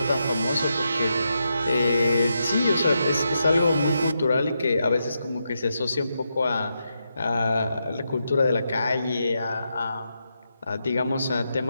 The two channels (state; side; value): inverted; both; correlation -0.84